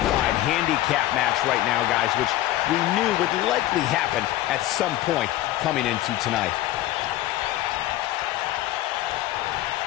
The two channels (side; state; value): right; quieter; 14.9 dB